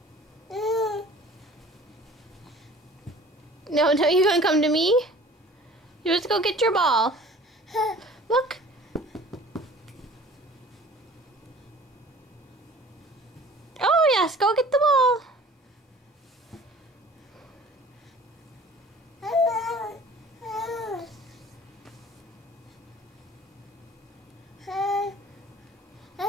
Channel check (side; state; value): both; normal; correlation 0.47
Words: No, you're gonna come to me? You just go get your ball. Look. Oh yes, go get the ball.